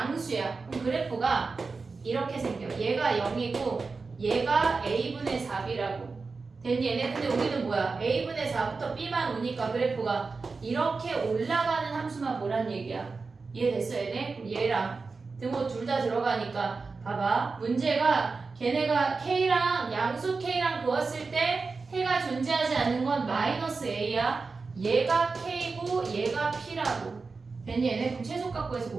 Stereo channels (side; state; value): left; quieter; 4.3 dB